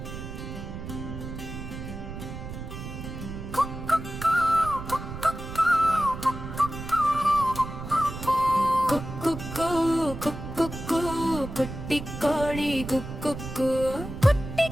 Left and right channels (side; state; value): right; noise; rumble, 9 dB below the sound